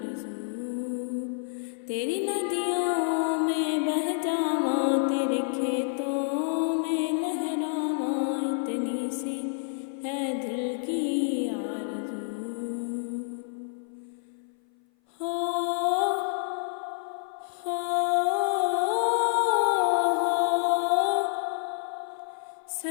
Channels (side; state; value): right; silent; 56 dB below the other